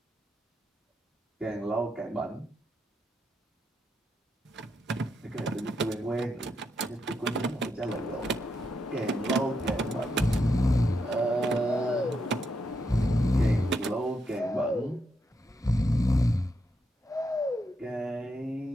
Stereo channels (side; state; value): both; normal; correlation 0.82